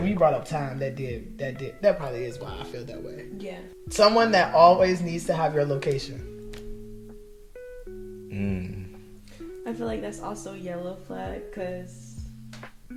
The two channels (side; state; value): both; identical; correlation 1.00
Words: when you brought up time, that probably is why I feel that way. Yeah. Someone that always needs to have your location. I feel like that's also yellow flag because